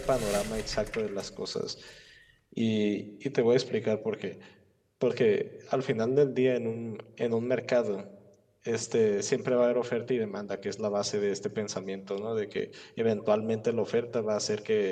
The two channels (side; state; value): both; identical; correlation 1.00